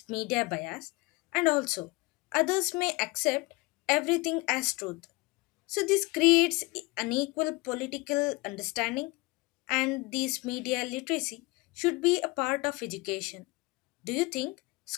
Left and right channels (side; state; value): right; quieter; 23.9 dB